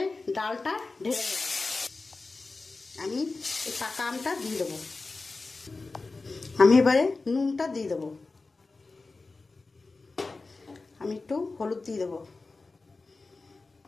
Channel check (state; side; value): quieter; right; 3.7 dB